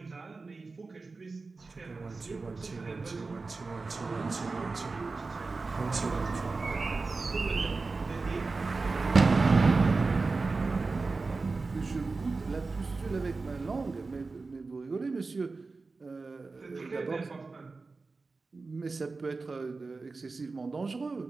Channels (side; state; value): left; quieter; 3.9 dB